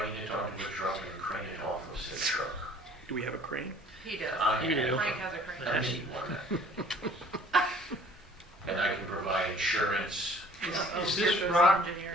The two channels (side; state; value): both; normal; correlation 0.53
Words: it onto a truck and crane it off of said truck. do we have a crane? He does. You do. Frank has a crane. I need one. And I can provide insurance. Is this rock